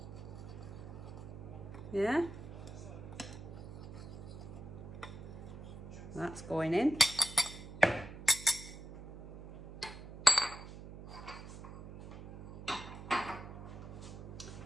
Yeah? That's going in.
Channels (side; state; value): right; noise; hum, 11 dB below the sound